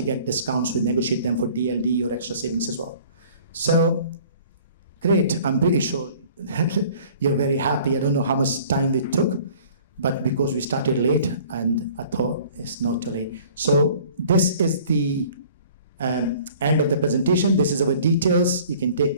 get discounts. We negotiate them for DLD or extra savings as well. So great. I'm pretty sure you're very happy. I don't know how much time we took, but because we started late, and I thought it's not too late. So this is the end of the presentation. This is our details. You can take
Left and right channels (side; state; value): both; inverted; correlation -0.51